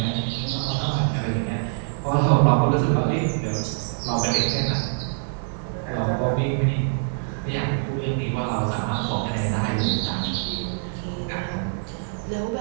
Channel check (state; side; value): silent; left; 62 dB below the other